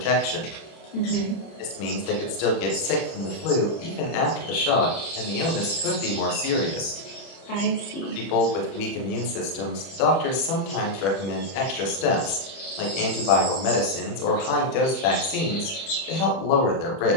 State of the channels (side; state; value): right; late; 31 ms